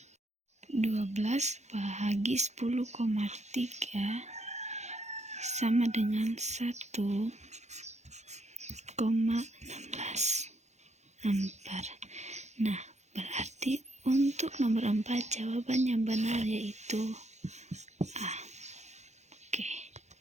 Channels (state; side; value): late; left; 0.33 ms